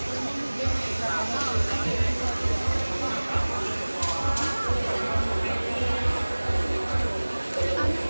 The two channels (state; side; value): inverted; both; correlation -1.00